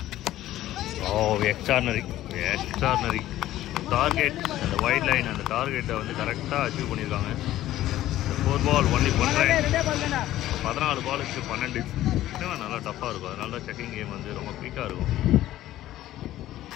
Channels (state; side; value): quieter; right; 14.2 dB